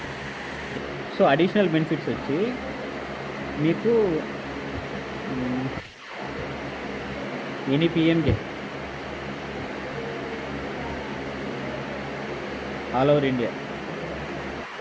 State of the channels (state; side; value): identical; both; correlation 1.00